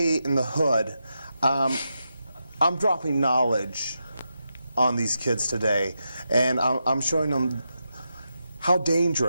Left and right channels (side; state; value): both; inverted; correlation -0.86